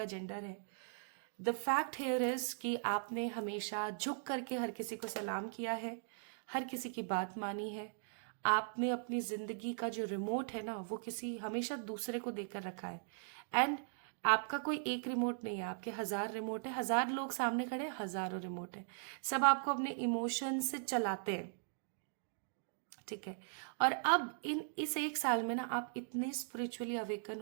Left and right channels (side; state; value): left; silent; digital silence